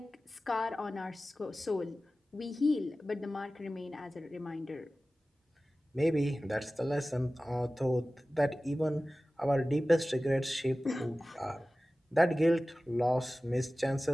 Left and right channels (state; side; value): normal; both; correlation 0.96